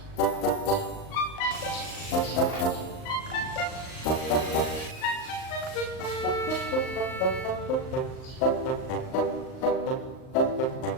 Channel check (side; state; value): right; late; 38 ms